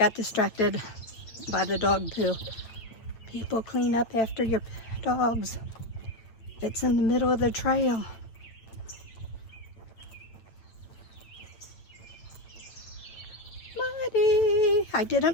distracted by the dog poo. People clean up after your dogs. It's in the middle of the trail. Muddy. I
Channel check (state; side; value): late; right; 8.9 ms